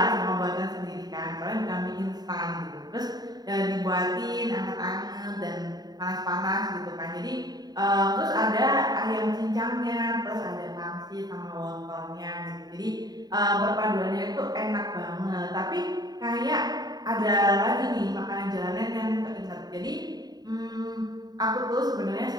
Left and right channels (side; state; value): left; late; 0.19 ms